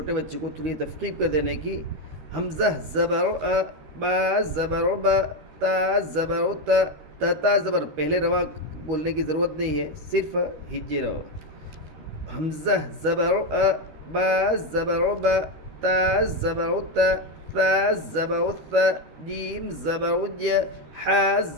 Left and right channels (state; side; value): late; left; 13 ms